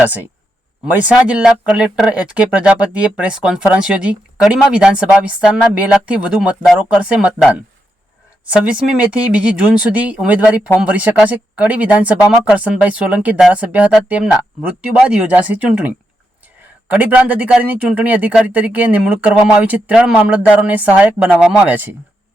મહેસાણા જિલ્લા કલેક્ટર એચ.કે. પ્રજાપતિએ પ્રેસ કોન્ફરન્સ યોજી કડીમાં વિધાનસભા વિસ્તારના 2 લાખથી વધુ મતદારો કરશે મતદાન। 26મી મેથી 2 જૂન સુધી ઉમેદવારી ફોર્મ ભરી શકાશે। કડી વિધાનસભામાં કરશનભાઈ સોલંકી ધારાસભ્ય હતા, તેમના મૃત્યુ બાદ યોજાશે ચૂંટણી। કડી પ્રાંત અધિકારીની ચૂંટણી અધિકારી તરીકે નિમણૂક કરવામાં આવી છે। 3 મામલતદારોને સહાયક બનાવવામાં આવ્યા છે।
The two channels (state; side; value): normal; both; correlation 0.83